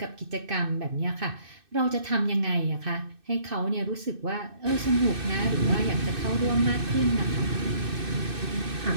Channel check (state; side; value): late; left; 2.6 ms